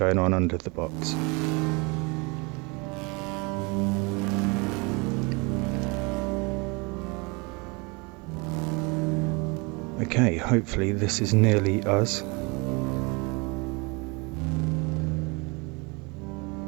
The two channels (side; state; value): left; quieter; 28.9 dB